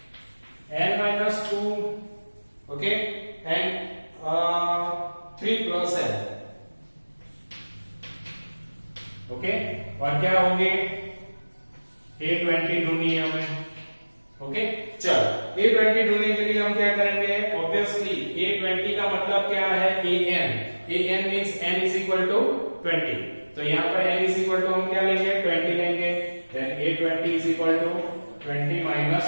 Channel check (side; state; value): both; inverted; correlation -1.00